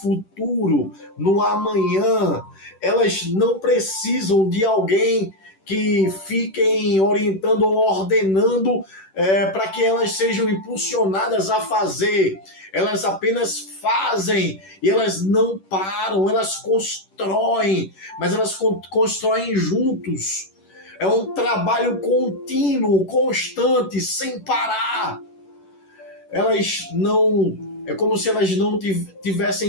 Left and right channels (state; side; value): late; right; 10 ms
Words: no amanhã. Elas não precisam de alguém que fiquem orientando ou ordenando para que elas sejam impulsionadas a fazer. Elas apenas fazem e elas não param, elas constroem, mas elas constroem juntos. É um trabalho contínuo, constante, sem parar. Elas não... É como se elas não